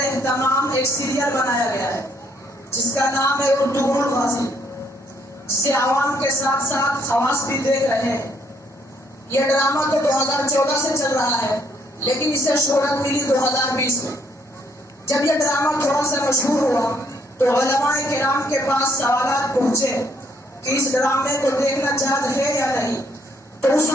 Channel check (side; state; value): both; normal; correlation 0.69